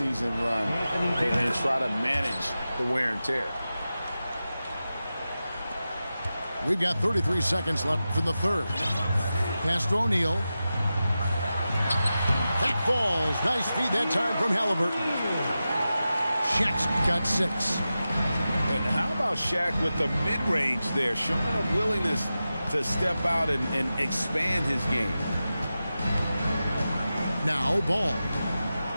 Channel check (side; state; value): both; inverted; correlation -0.93